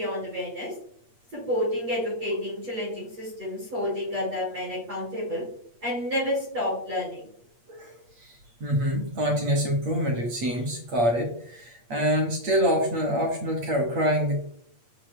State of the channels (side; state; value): left; late; 8.5 ms